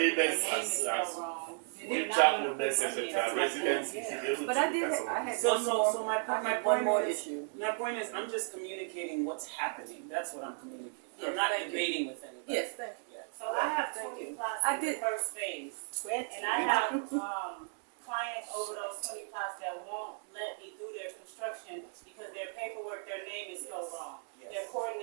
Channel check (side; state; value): left; silent; 55 dB below the other